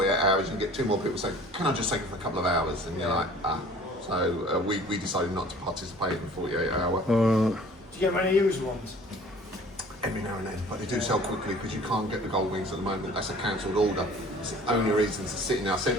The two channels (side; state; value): both; normal; correlation 0.49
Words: hours and get two more people say, can I just take it for a couple of hours? And you're like, ah. So we decided not to participate in the 48 hour. Do you get many used ones? Every now and then, but they do sell quickly because you can't get the Goldwings at the moment. That's a cancelled order. It's the only reason it's sitting there. I sent